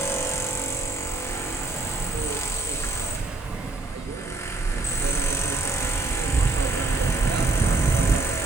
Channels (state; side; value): quieter; left; 3.2 dB